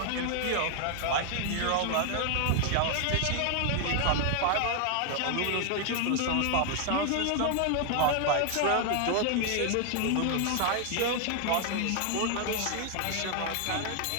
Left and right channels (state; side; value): different; both; correlation 0.00